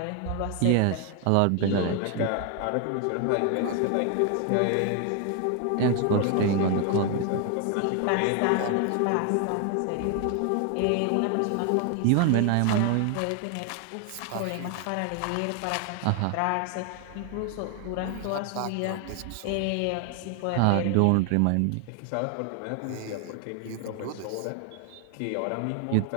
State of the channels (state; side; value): different; both; correlation 0.01